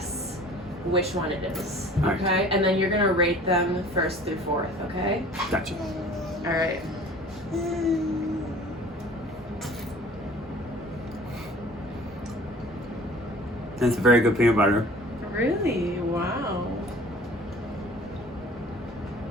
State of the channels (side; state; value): both; normal; correlation 0.48